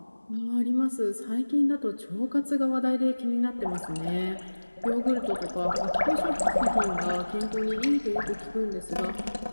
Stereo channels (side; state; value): both; inverted; correlation -1.00